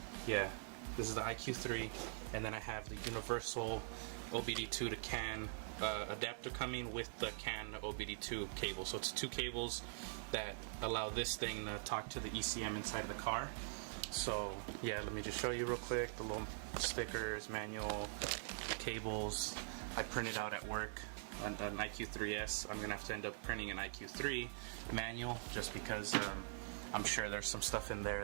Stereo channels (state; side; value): silent; left; digital silence